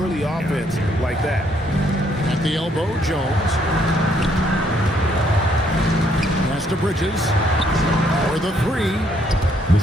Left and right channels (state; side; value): normal; both; correlation 0.69